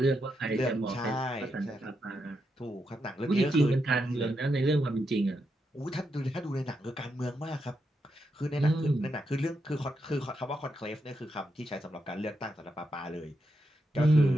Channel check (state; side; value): normal; both; correlation 0.83